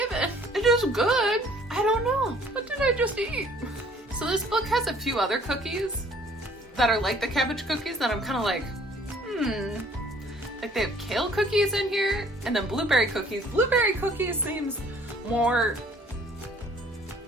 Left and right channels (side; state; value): both; normal; correlation 0.57